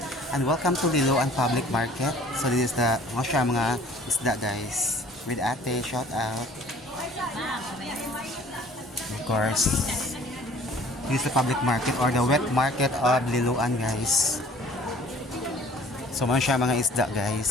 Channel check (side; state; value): both; normal; correlation 0.52